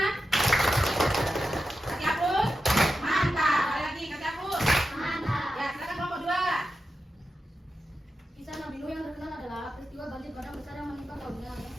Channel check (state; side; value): normal; both; correlation 0.90